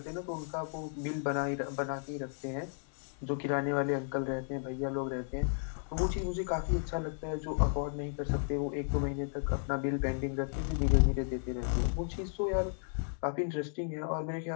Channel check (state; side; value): silent; right; digital silence